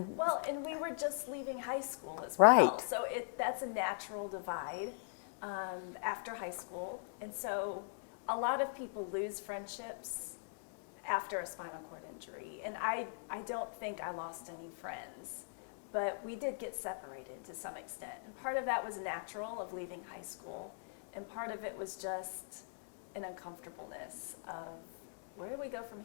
Well, and we were just leaving high school as well. Right. So that's a natural divide after high school. And so a lot of people lose friendships after a spinal cord injury. And I don't think I lost any friends, but we did get separated to some extent. And part of that was natural of leaving high school, and part of it was just an uncomfortableness of, where do we go from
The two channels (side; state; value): right; silent; digital silence